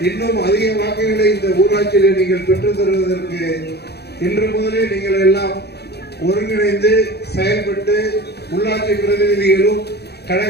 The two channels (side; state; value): right; late; 0.48 ms